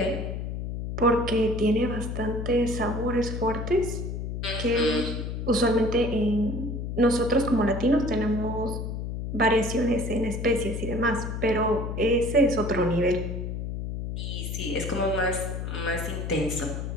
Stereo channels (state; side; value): noise; left; hum, 4 dB below the sound